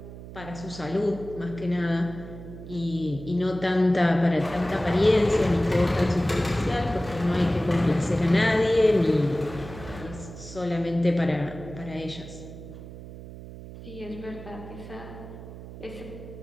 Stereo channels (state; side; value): noise; right; hum, 14 dB below the sound